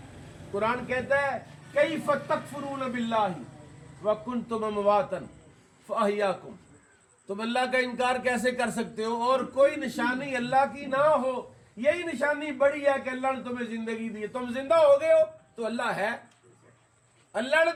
कुरान कहता है कैफ़ तकफुरून बिल्लाहि व कुंतुम अमवातन फअहयाकुम, तुम अल्लाह का इनकार कैसे कर सकते हो और कोई निशानी अल्लाह की ना हो। यही निशानी बड़ी है कि अल्लाह ने तुम्हें जिंदगी दी है, तुम जिंदा हो गए हो तो अल्लाह है। अल्लाह ने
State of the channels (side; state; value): both; identical; correlation 1.00